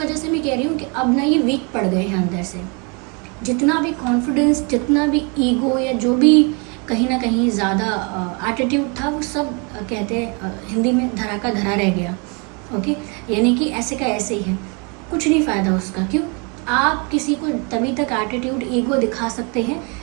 से मैं कह रही हूँ कि अब ना ये वीक पड़ गए हैं अंदर से। जितना भी कॉन्फिडेंस, जितना भी ईगो या जो भी कहीं ना कहीं ज़्यादा एटीट्यूड था, वो सब कहते हैं हिंदी में धरा का धरा रह गया। ओके, यानी कि ऐसे का ऐसे ही है, कुछ नहीं फ़ायदा उसका। क्यों? आप किसी को तभी तक एटीट्यूड, ईगो दिखा सकते हैं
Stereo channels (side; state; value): left; quieter; 33.2 dB